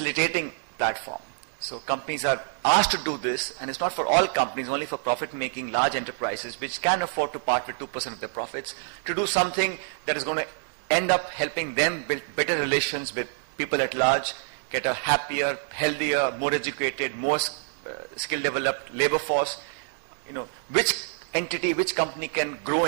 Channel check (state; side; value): silent; left; digital silence